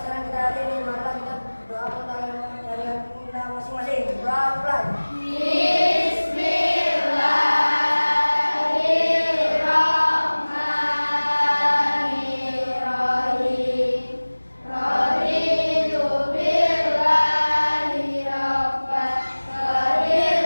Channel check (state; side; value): inverted; both; correlation -1.00